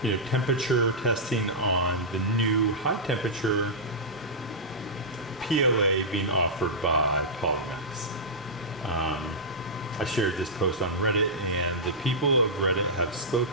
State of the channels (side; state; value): both; normal; correlation -0.13